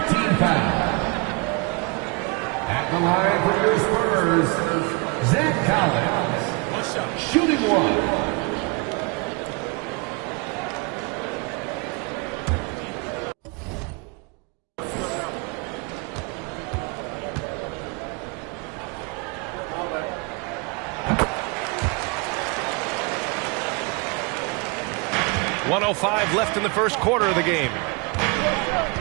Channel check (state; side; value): quieter; left; 29.8 dB